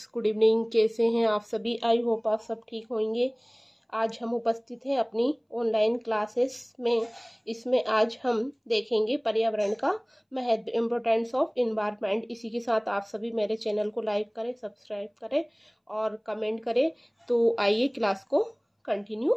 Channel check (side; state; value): both; identical; correlation 1.00